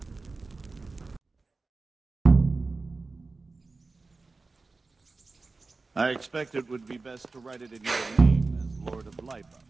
I expect it would be best to write it in your name as Lord of Lipa.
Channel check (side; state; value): left; quieter; 3.8 dB